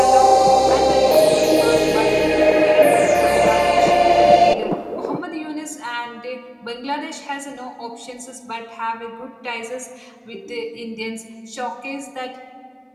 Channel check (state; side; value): identical; both; correlation 1.00